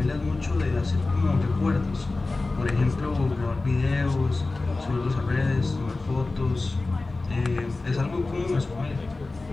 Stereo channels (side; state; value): right; quieter; 3.4 dB